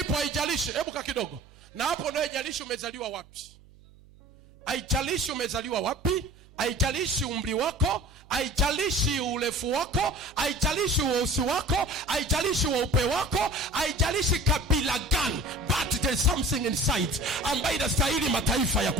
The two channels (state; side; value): noise; right; hum, 25 dB below the sound